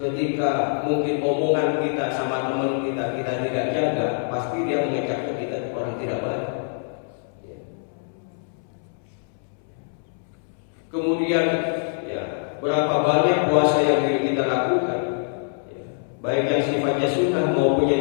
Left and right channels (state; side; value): silent; right; 62 dB below the other